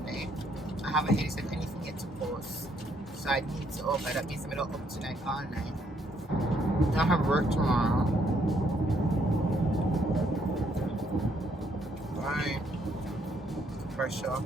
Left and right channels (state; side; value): normal; both; correlation 0.71